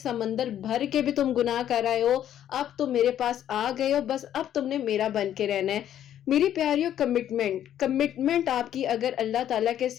بھر کے بھی تم گناہ کر رہے ہو، اب تم میرے پاس آ گئے ہو، بس اب تم نے میرا بن کے رہنا ہے۔ میری پیاریوں، کمٹمنٹ آپ کی اگر اللہ تعالیٰ کے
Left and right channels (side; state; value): right; quieter; 10.8 dB